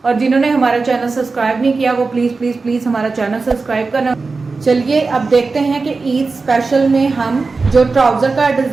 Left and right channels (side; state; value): left; quieter; 4.1 dB